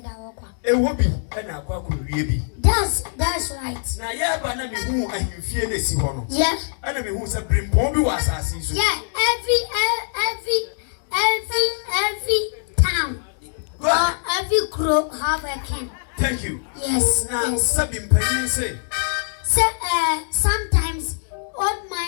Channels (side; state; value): right; silent; digital silence